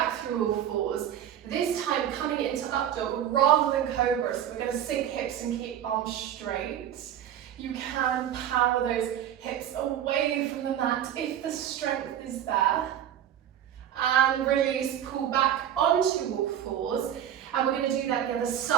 through all fours. This time coming into up dog rather than cobra, so we're going to sink hips and keep arms straight. You can power those hips away from the mat if the strength is there. And release, pull back onto all fours. And we're going to do that the other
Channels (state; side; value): quieter; left; 10.4 dB